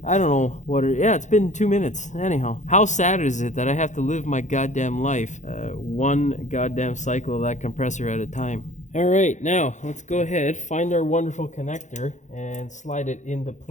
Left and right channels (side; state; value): right; late; 0.35 ms